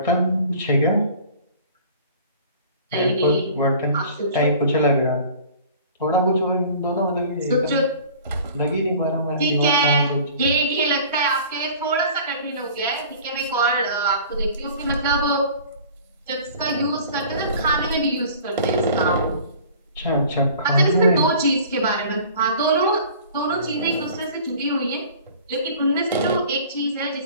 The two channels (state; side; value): inverted; both; correlation -0.46